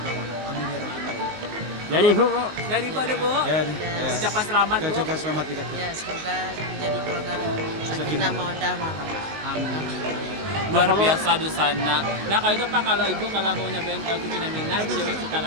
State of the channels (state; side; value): late; left; 19 ms